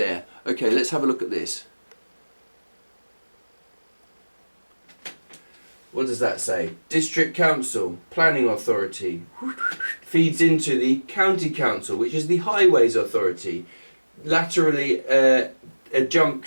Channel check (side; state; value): both; inverted; correlation -1.00